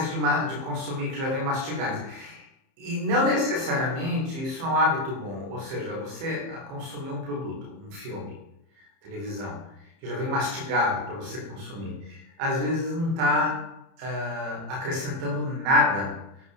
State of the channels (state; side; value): late; left; 30 ms